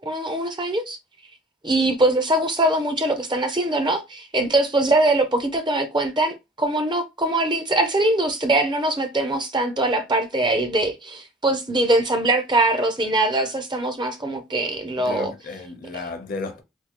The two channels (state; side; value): normal; both; correlation 0.44